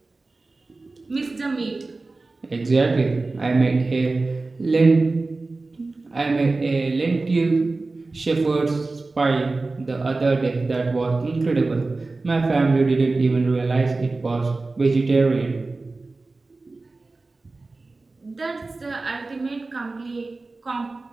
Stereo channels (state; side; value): quieter; left; 3.5 dB